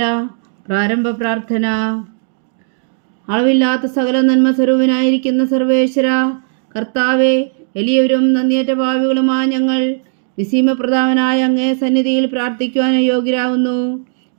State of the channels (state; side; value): silent; left; digital silence